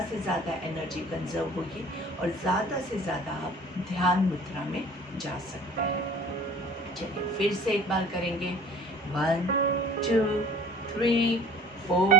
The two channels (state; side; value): normal; both; correlation 0.47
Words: से ज़्यादा एनर्जी कंजर्व होगी और ज़्यादा से ज़्यादा आप ध्यान मुद्रा में जा सकते हैं। चलिए फिर से एक बार करेंगे। 1 2 3 4